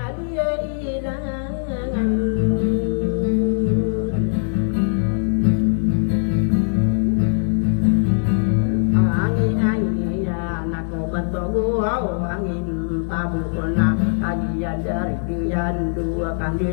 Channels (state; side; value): silent; right; 59 dB below the other